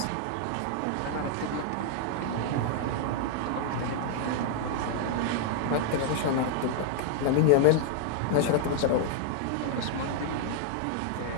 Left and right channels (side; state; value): both; different; correlation -0.01